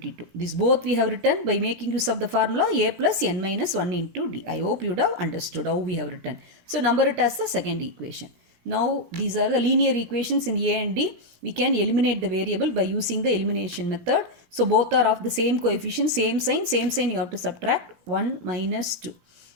This both we have written by making use of the formula A plus n minus 1 into D. I hope you would have understood how we have written. So number it as the second equation. Now these are the linear equations in A and D. We can eliminate the variable by using the elimination method. So both are of the same coefficient, same sign you have to subtract 1 minus 2.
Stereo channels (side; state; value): left; late; 17 ms